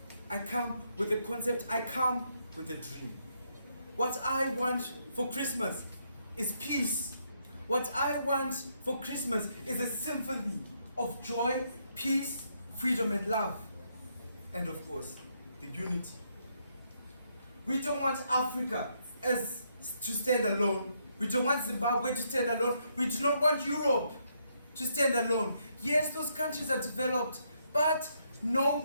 I come with a concept. I come with a dream. What I want for Christmas is peace. What I want for Christmas is a symphony of joy, peace, freedom, and love. And of course, the unity. We don't want Africa to stand alone. We don't want Zimbabwe to stand alone. We do not want Europe to stand alone. Yes, those countries are developed, but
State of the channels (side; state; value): both; inverted; correlation -0.75